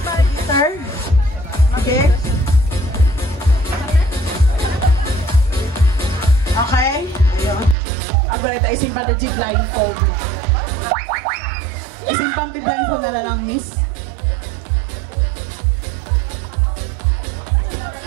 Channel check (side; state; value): left; drops out; at 7.8 s